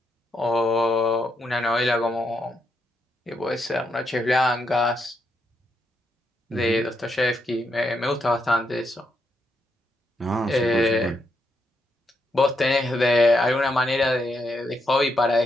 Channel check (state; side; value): normal; both; correlation 0.80